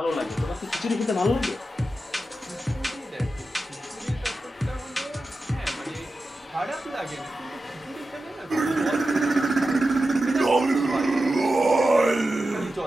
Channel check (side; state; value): both; normal; correlation 0.92